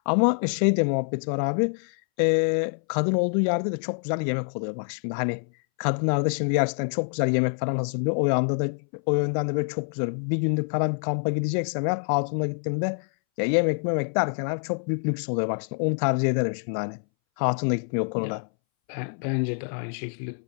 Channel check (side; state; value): right; silent; 61 dB below the other